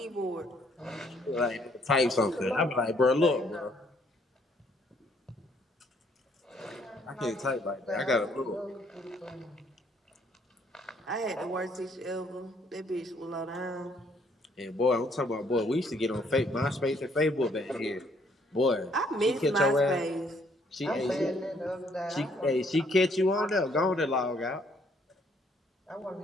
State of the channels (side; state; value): both; normal; correlation 0.66